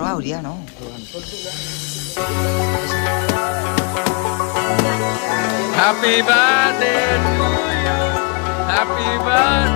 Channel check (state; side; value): quieter; right; 32.6 dB